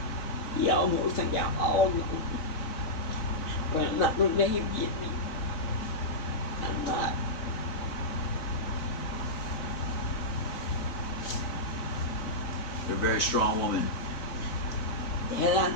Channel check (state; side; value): late; right; 4.1 ms